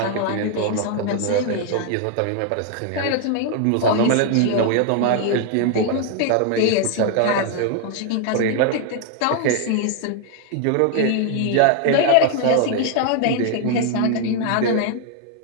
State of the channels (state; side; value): different; both; correlation 0.00